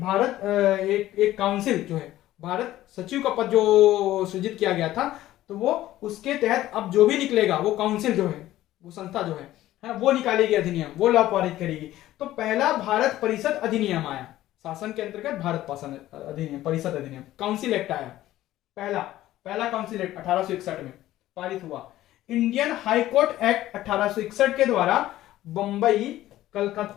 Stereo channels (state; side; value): quieter; right; 14.7 dB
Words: एक काउंसिल जो है, भारत सचिव का पद जो सृजित किया गया था, तो वो उसके तहत अब जो भी निकलेगा वो काउंसिल जो है, वो संस्था जो है वो निकालेगी अधिनियम, वो लॉ पारित करेगी। तो पहला भारत परिषद अधिनियम आया, शासन के अंतर्गत भारत शासन अधिनियम, परिषद अधिनियम, काउंसिल एक्ट आया। पहला काउंसिल एक्ट 1861 में पारित हुआ। इंडियन हाई कोर्ट एक्ट 1861 के द्वारा बंबई,